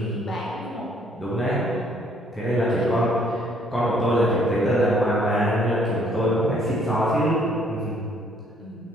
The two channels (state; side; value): normal; both; correlation 0.64